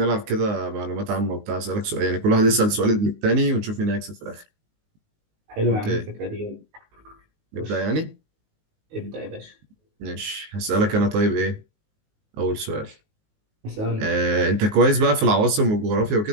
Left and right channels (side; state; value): left; late; 19 ms